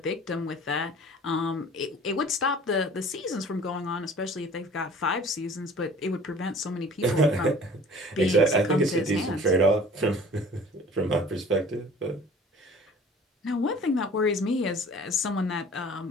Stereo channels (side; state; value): both; normal; correlation 0.47